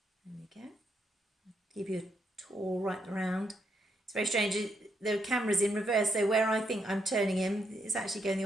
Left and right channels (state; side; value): normal; both; correlation 0.77